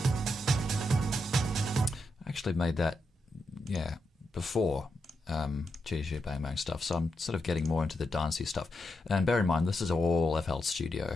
I actually made that, yeah, before GG Bang Bang stuff, so I'm sort of getting more into the dancey stuff. And bear in mind, this is all FL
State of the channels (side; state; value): both; normal; correlation 0.84